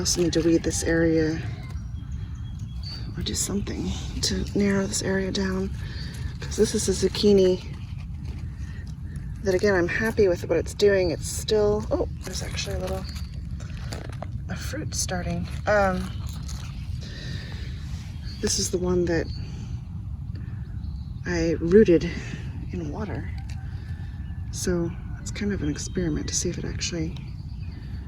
need to weed this area, or do something to narrow this area down, because this is a zucchini that, again, I'm happy with what it's doing. It's still, oh, there's actually a fruit starting. This is the one that I rooted in water. So it's kind of an experiment to see if it actually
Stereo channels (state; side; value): identical; both; correlation 1.00